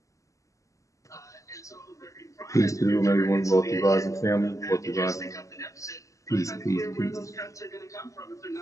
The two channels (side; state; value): right; late; 0.16 ms